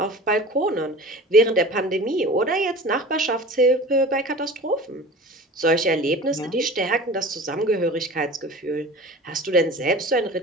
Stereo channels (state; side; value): normal; both; correlation 0.38